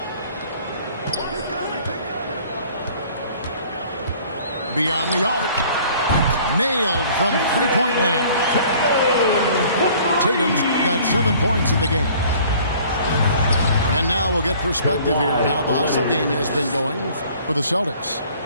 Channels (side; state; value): both; inverted; correlation -0.53